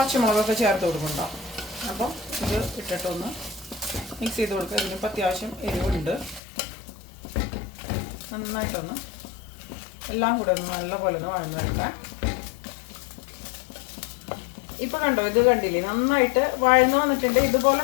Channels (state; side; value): drops out; right; at 6.4 s